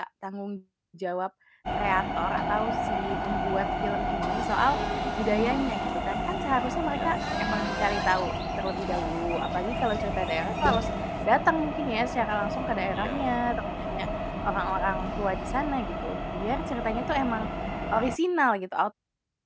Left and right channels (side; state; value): both; identical; correlation 1.00